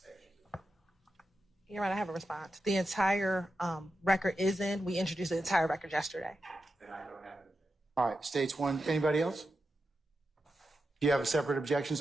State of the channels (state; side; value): normal; both; correlation 0.89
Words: You're right. I have a response. The entire record is in. We introduced the entire record yesterday. Then I don't have an objection. All right, State's 1. Anybody else? Do you have a separate objection,